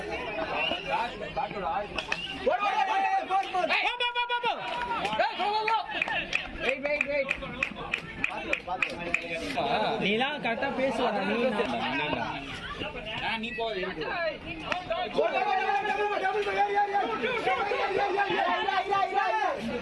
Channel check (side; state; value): both; identical; correlation 1.00